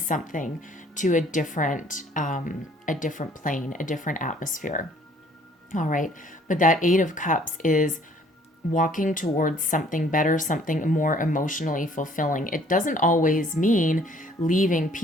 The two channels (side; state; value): both; normal; correlation 0.58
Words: to a different plane, a different atmosphere. All right. But that Eight of Cups is walking towards something better, something more emotionally fulfilling. It doesn't always mean leaving